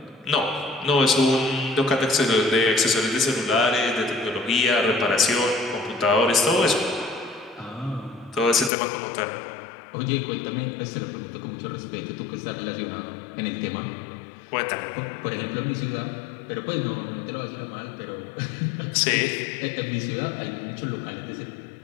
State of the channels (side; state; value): right; drops out; at 8.7 s